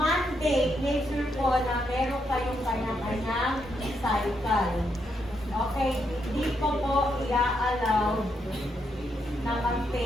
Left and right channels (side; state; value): both; normal; correlation 0.79